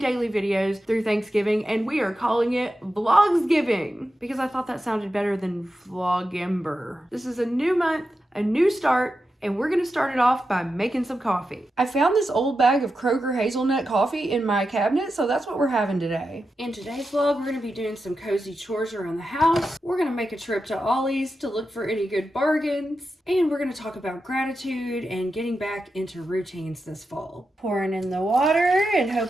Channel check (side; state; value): both; normal; correlation 0.89